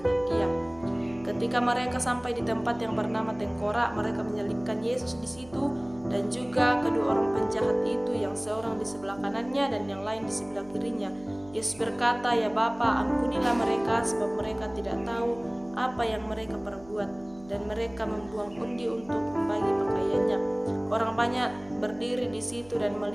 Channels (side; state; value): right; noise; hum, 22 dB below the sound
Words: dia. Ketika mereka sampai di tempat yang bernama Tengkorak, mereka menyelipkan Yesus di situ dan juga kedua orang penjahat itu, yang seorang di sebelah kanannya dan yang lain di sebelah kirinya. Yesus berkata, "Ya Bapa, ampunilah mereka, sebab mereka tidak tahu apa yang mereka perbuat." Dan mereka membuang undi untuk membagi pakaiannya. Orang banyak berdiri di situ dan